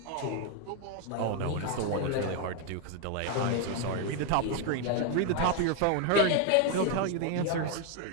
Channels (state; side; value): different; both; correlation 0.01